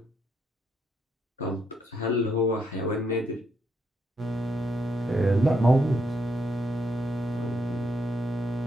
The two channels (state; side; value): normal; both; correlation 0.76